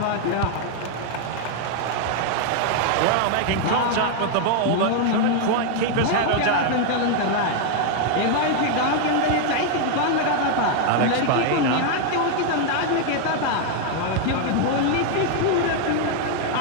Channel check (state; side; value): different; both; correlation 0.00